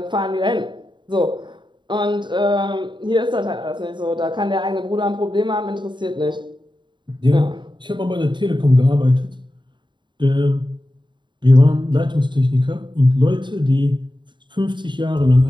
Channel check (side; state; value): left; late; 0.23 ms